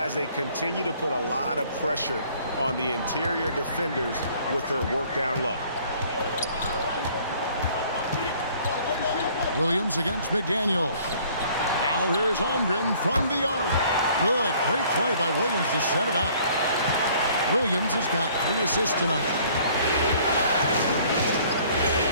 they continue to put a lot of pressure on the interior defenders with their work down low. Williams against McDaniel. Now here's Holmgren from the arc. Good. Great play by Williams to set it up. Williams has got 3 assists tonight.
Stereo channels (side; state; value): both; inverted; correlation -0.57